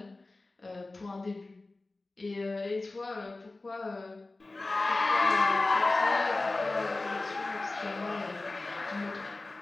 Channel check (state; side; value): quieter; right; 3.2 dB